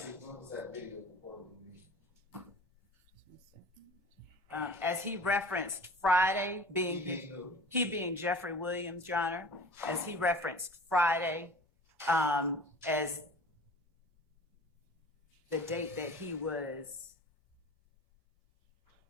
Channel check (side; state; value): both; normal; correlation 0.41